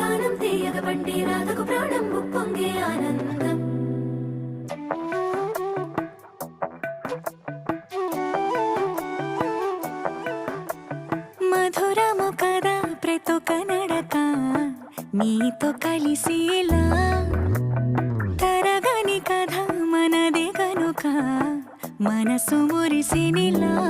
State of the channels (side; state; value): both; identical; correlation 1.00